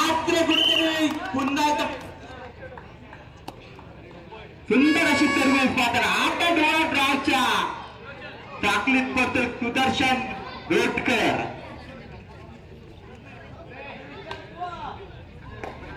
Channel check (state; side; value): identical; both; correlation 1.00